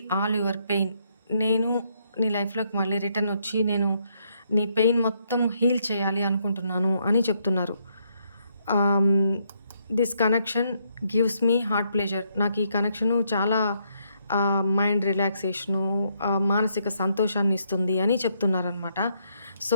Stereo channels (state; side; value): inverted; both; correlation -0.74